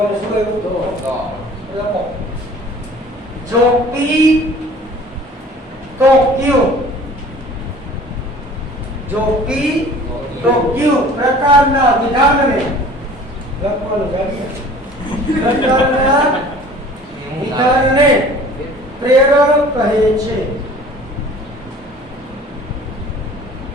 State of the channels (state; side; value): normal; both; correlation 0.47